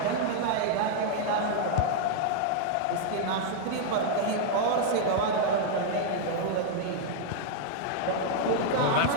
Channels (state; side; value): different; both; correlation -0.01